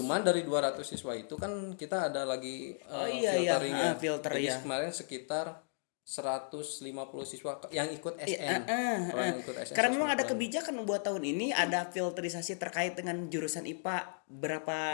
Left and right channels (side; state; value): right; silent; digital silence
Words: dari 200 siswa itu kan kita ada lagi filtering ya. filter Jadi ya. kemarin sekitar 150 siswa yang ikut SN. Kalau yang ikut SN. Karena memang ada 150. kebijakan buat tahun ini ada filterisasi terkait dengan jurusan IPA berapa